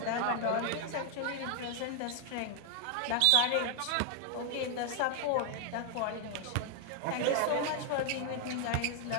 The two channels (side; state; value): both; different; correlation 0.00